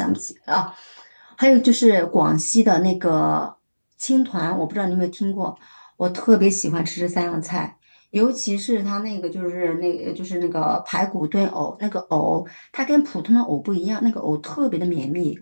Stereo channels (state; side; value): inverted; both; correlation -1.00